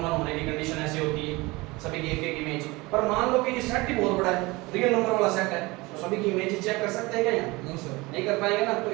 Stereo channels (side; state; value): left; quieter; 23.0 dB